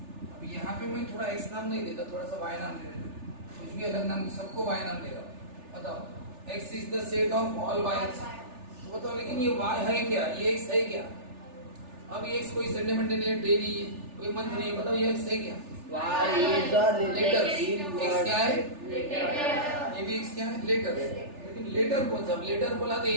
यहाँ पे मैं थोड़ा एक्स नाम नहीं देता, थोड़ा सा वाई नाम दे देता, कुछ भी अलग नाम, सबको वाई नाम दे रहा हूँ। बताओ X is the set of all Y. तो बताओ लेकिन ये वाई है क्या, ये एक्स है क्या? अब ये एक्स कोई संडे मंडे नहीं है, डे नहीं है, कोई मंथ नहीं है, बताओ ये एक्स है क्या? लेटर। एक्स क्या है? ये भी एक्स क्या है? लेटर। लेकिन लेटर कौन सा? लेटर बोला तो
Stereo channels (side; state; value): left; late; 3.4 ms